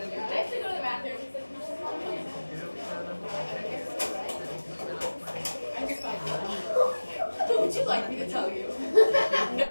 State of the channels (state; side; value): inverted; both; correlation -1.00